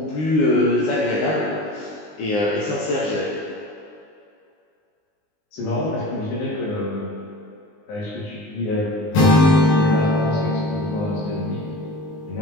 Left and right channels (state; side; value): late; right; 19 ms